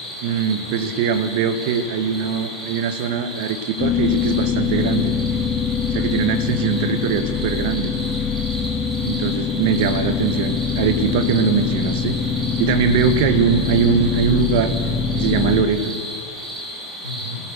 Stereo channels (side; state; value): both; normal; correlation 0.06